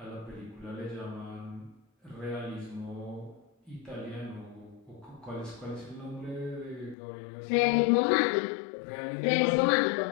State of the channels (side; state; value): right; drops out; at 7.0 s